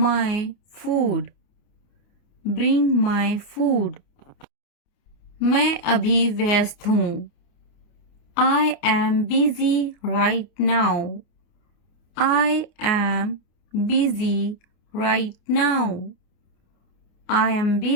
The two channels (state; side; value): late; right; 29 ms